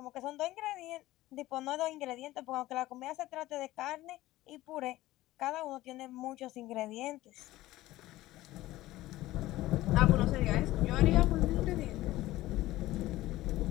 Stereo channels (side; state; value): right; quieter; 16.7 dB